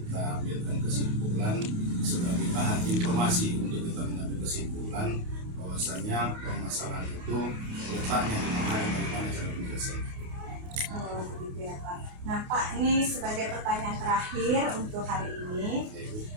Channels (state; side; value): late; left; 28 ms